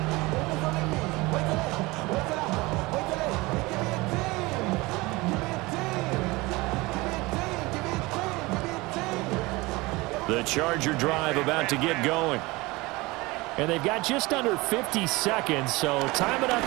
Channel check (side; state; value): left; quieter; 22.5 dB